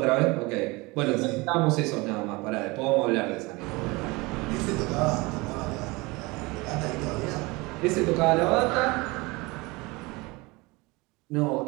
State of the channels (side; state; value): left; quieter; 24.1 dB